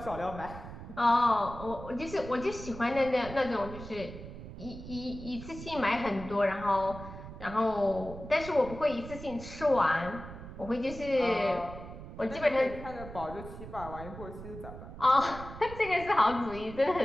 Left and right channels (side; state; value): right; noise; rumble, 12 dB below the sound